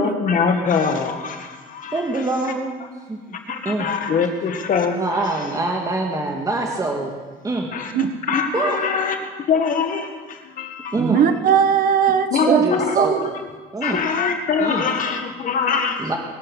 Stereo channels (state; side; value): normal; both; correlation 0.30